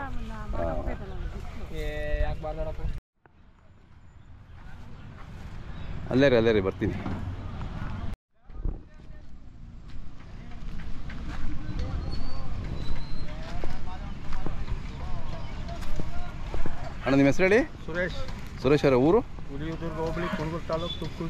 ಹಾಂ, ಅಲ್ಲೇ ರೀ ಬರ್ತೀನಿ. ಅಣ್ಣ ನಿಮ್ಮ ಹೆಸರು ಹೇಳಿ? ಸುರೇಶ್ ಅವರ ಊರು? ಹುಲಿಯೂರು ಹೋಬಳಿ ಕುರುಗೂರು ತಾಲೂಕು, ತುಮಕೂರು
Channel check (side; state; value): both; identical; correlation 1.00